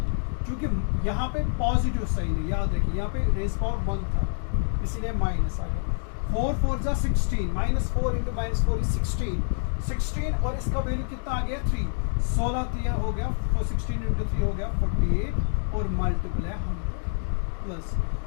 क्योंकि यहाँ पे पॉजिटिव साइन है, याद रखिए यहाँ पे रेज़ पावर 1 था इसीलिए माइनस आ गया, 4 4 जा 16, -4 इंटू -4 इज 16 और इसका वैल्यू कितना आ गया 3, 16 3 हो गया, 16 इंटू 3 हो गया 48 और मल्टीपल है 100, प्लस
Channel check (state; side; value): silent; right; digital silence